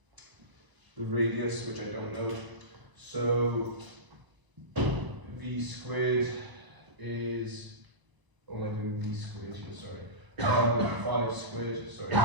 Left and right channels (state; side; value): late; left; 1.0 ms